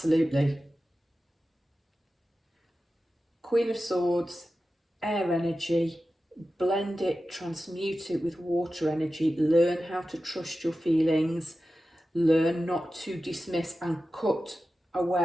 Queen of Swords, air energy, blend it, transmute it with water energy, learn how to trust your feelings, learn not to dismiss and cut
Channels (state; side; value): normal; both; correlation 0.93